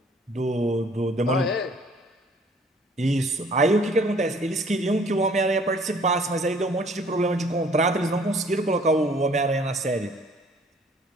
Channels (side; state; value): both; normal; correlation 0.57